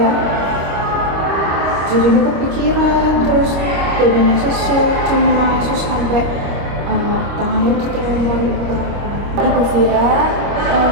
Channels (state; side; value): late; left; 25 ms